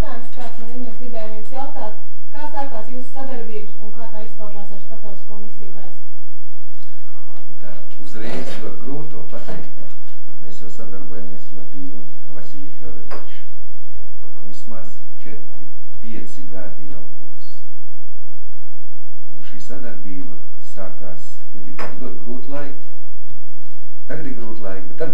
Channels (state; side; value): normal; both; correlation 0.47